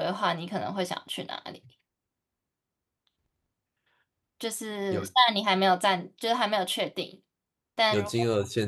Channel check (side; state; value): both; identical; correlation 1.00